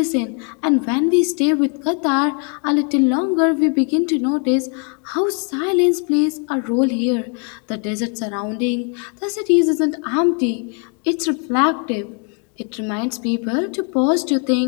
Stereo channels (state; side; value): quieter; right; 38.1 dB